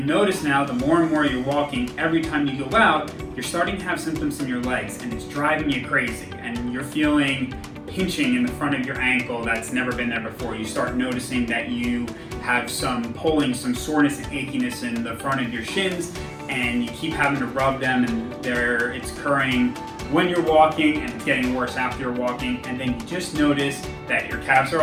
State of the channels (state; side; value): identical; both; correlation 1.00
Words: notice now, the more and more you're walking, every time you go out, you're starting to have symptoms in your legs, and it's driving you crazy, and you're feeling pinching in the front of your ankle that's never been there before. You start noticing that you have some pulling, some soreness and achiness in the front of your shins, and you keep having to rub them, and it's occurring when you're walking, and it's getting worse after you're walking, and then you just notice that your calves